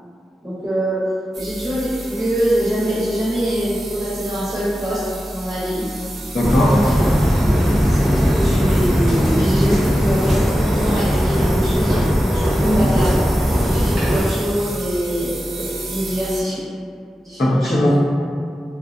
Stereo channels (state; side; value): normal; both; correlation 0.92